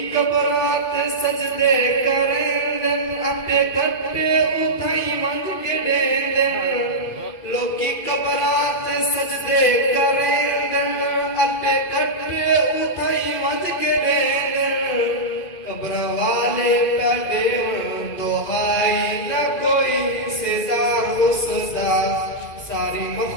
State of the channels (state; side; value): late; right; 2.5 ms